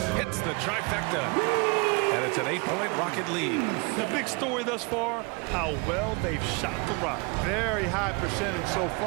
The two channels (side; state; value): left; quieter; 29.8 dB